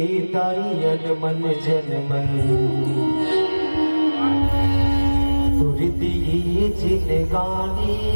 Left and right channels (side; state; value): both; inverted; correlation -1.00